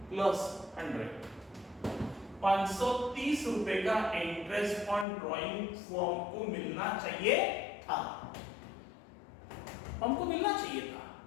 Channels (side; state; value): right; drops out; at 5.1 s